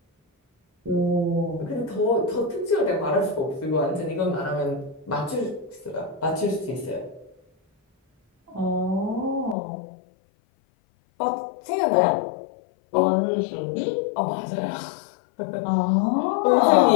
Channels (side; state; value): right; drops out; at 9.6 s